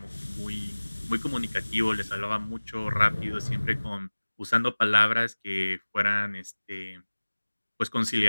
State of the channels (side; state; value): both; inverted; correlation -1.00